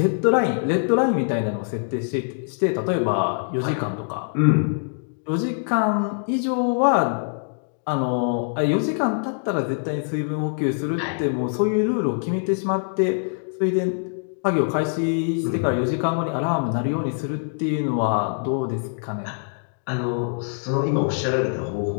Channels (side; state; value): right; silent; digital silence